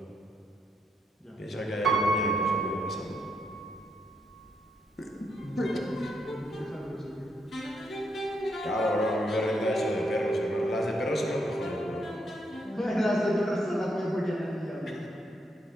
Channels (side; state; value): both; normal; correlation 0.77